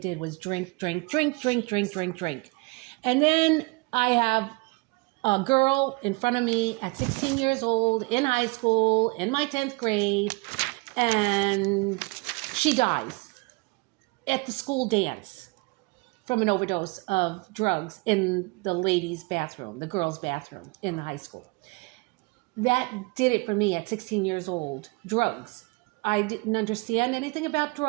was drink. And then I have a girl in front of me at 16 years old in high school, in my 10th grade, and she dies at the school dance from an overdose of drugs in the ladies' bathroom, the girls' bathroom in the high school. That did it for me at 16 years old. Drugs. I didn't understand anything about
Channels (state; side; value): quieter; left; 27.4 dB